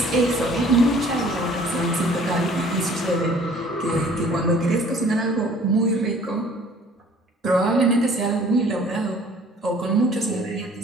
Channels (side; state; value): both; normal; correlation 0.53